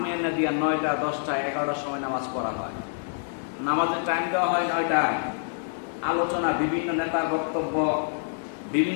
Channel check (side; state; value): right; silent; digital silence